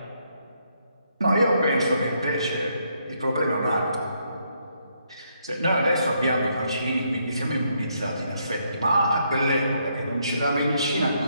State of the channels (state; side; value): inverted; both; correlation -0.75